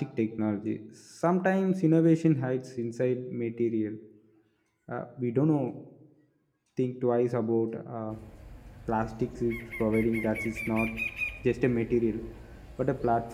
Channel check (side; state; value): both; identical; correlation 1.00